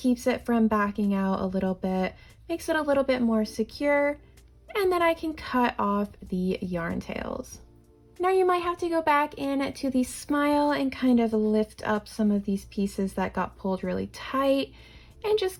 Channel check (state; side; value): identical; both; correlation 1.00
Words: it from backing out a little bit, makes it a little bit more secure. And then I can cut off the yarn tails. Now you might have to go back in to the smile and kind of lift up some of these pieces that got pulled really tight and